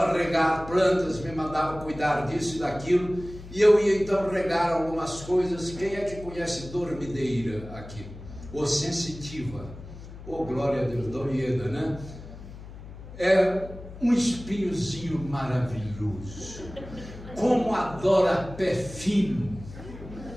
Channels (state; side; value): noise; left; hum, 14 dB below the sound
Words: regar plantas, me mandava cuidar disso e daquilo. E eu ia então regar algumas coisas. Quem é que conhece dormideira aqui? Ou sensitiva? Oh, glória a Deus, Dorieda, né? É um espinhozinho maravilhoso. Como adora pé fino.